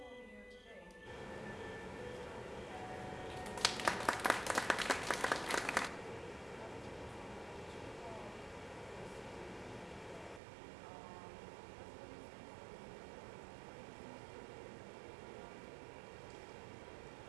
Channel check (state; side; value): drops out; left; at 10.4 s